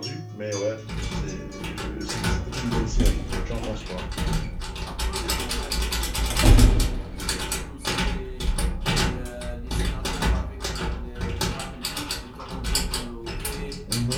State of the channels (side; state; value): both; identical; correlation 1.00